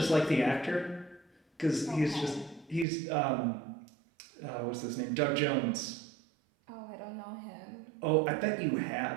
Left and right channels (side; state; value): left; drops out; at 2.9 s